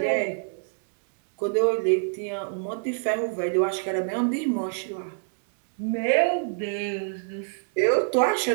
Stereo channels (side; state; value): left; silent; digital silence